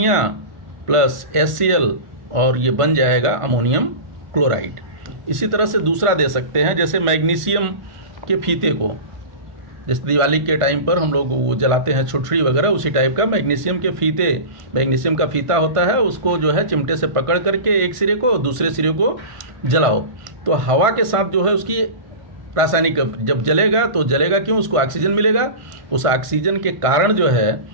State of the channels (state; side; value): late; left; 1.5 ms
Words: प्लस HCl, और ये बन जाएगा अमोनियम क्लोराइड। इसी तरह से दूसरा दे सकते हैं, जैसे मैग्नीशियम के फीते को, जैसे दिवाली के टाइम पर हम लोग वो जलाते हैं छुटछुड़ी वगैरह, उसी टाइप का मैग्नीशियम के फीते, मैग्नीशियम का फीता होता है, उसको जो है चिमटे से पकड़ करके एक सिरे को दूसरे सिरे को जलाओ, तो हवा के साथ जो है उसकी रासायनिक, जब जलेगा तो जलेगा क्यों, उसको ऑक्सीजन मिलेगा, उस ऑक्सीजन के कारण जो